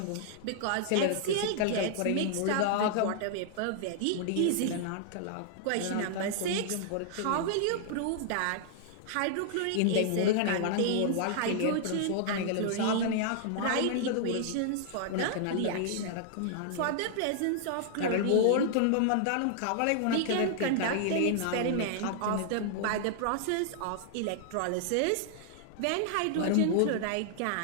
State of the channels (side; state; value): both; different; correlation -0.01